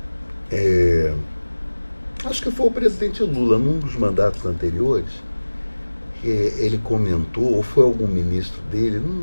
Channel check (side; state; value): both; inverted; correlation -1.00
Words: acho que foi o presidente Lula, num dos mandatos anteriores, ele comentou, ou foi algum ministro dele,